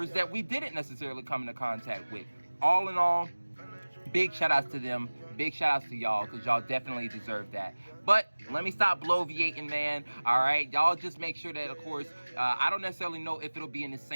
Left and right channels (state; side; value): inverted; both; correlation -1.00